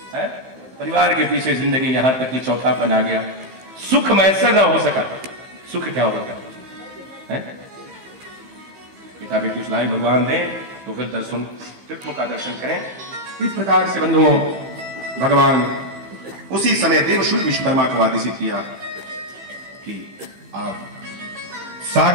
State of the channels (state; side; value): late; left; 15 ms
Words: है। परिवार के पीछे जिंदगी यहां तक कि चौथापन आ गया। सुख मैसर ना हो सका, सुख क्या होता है? पिता बेटी उस लायक भगवान दें तो फिर दर्शन, तीर्थों का दर्शन करें। इस प्रकार से बंधुओं, भगवान उसी समय देवशूल विश्वकर्मा को आदेशित किया कि आप